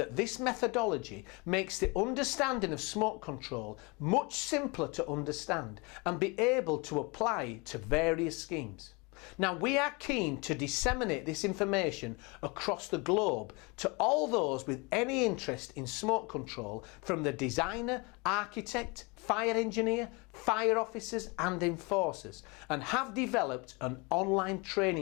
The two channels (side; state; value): right; quieter; 28.4 dB